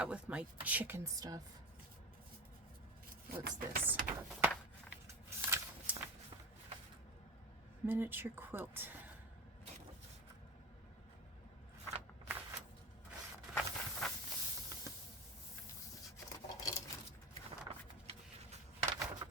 with my chicken stuff. What's this? Miniature quilt.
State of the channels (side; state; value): both; normal; correlation 0.27